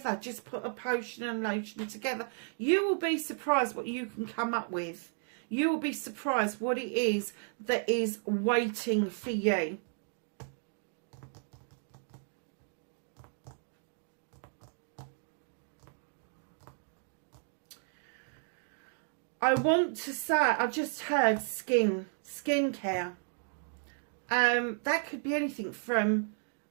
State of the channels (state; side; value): silent; left; 55 dB below the other